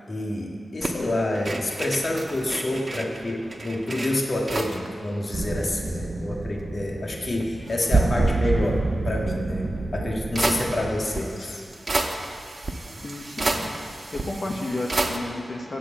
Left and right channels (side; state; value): both; normal; correlation 0.92